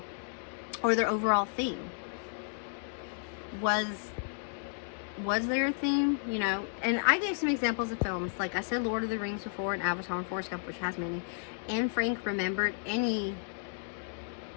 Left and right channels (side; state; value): right; silent; digital silence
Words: or their overall theme? Was there a theme? And I gave some examples of films. Like I said, Lord of the Rings before, and Avatar and Forrest Gump, which has many. Anne Frank remembered any